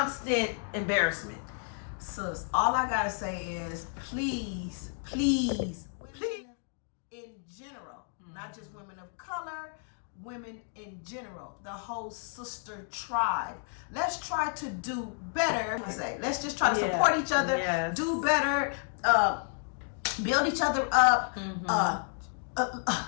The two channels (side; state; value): right; silent; 57 dB below the other